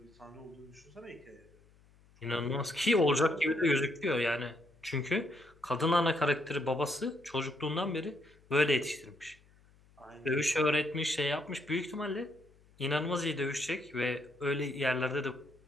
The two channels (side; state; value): left; noise; hum, 29 dB below the sound